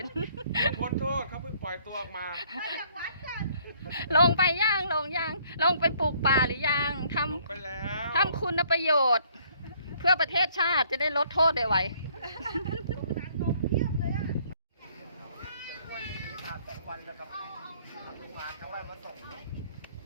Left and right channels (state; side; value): inverted; both; correlation -0.63